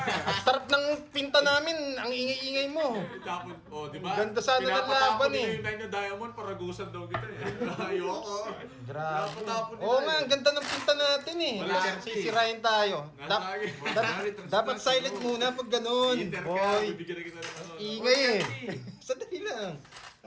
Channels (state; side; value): identical; both; correlation 1.00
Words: sarap ng pinta namin. Ang ingay-ingay mo. Tapos, oh, di ba? Ganda sana ng Pinapatapon laban niyo eh. yung line ng diamond, paragusan daw kita eh. Ayoko. Grabe. Pinapatapon nila Oo nga, eh. ang ganda ng pinta natin eh. Wala. Sisirain tayo. Nasa akin. Dapat silent muna pag ganun. Inter ka, Boy, bibigyan na kita ng ano. ingay eh. Sandali lang.